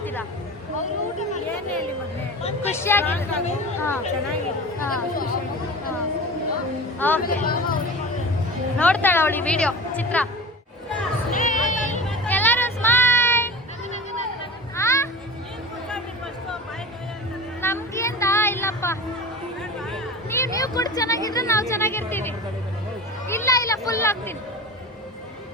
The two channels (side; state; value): both; normal; correlation 0.33